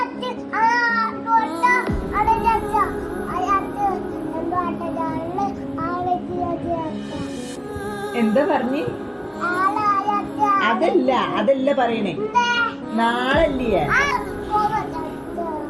എന്താ പറഞ്ഞ്? അതല്ല പറയണേ, നാളല്ലേ?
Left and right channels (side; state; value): both; identical; correlation 1.00